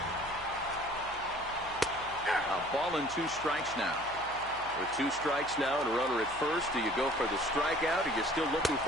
A ball and 2 strikes now. With 2 strikes now and a runner at first, do you go for the strikeout, or you're still looking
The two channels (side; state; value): right; noise; hum, 19 dB below the sound